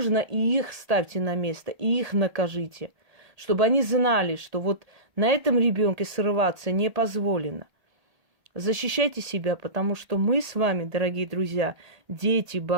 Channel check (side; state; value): left; late; 1.8 ms